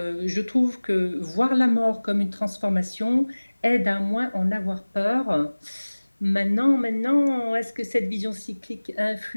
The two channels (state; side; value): inverted; both; correlation -1.00